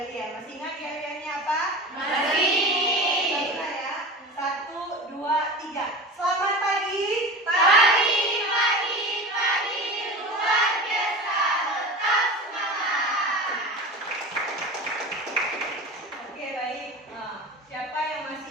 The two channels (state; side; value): normal; both; correlation 0.31